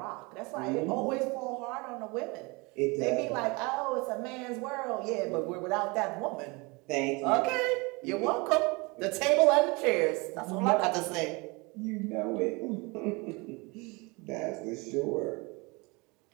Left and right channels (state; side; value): quieter; left; 27.1 dB